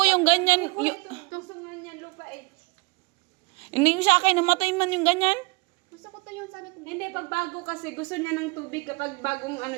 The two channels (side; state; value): left; quieter; 28.2 dB